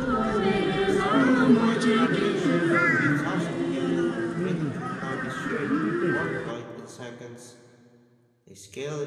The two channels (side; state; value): both; identical; correlation 1.00